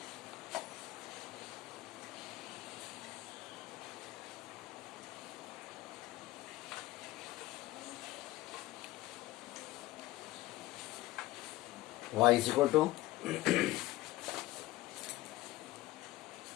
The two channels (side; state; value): right; quieter; 17.8 dB